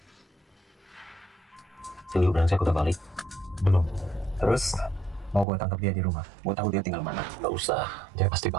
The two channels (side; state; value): left; drops out; at 5.5 s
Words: Si Liu brengsek udah balik. Belum. Terus, mau gue tangkap dia di rumah. Gue tahu dia tinggal mana. Gak usah, dia pasti